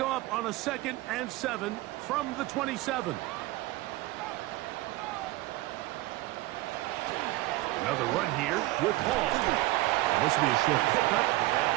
up on a 2nd and 7 from the 27. Another run here with Hall. This will be a short pickup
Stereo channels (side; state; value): left; quieter; 18.7 dB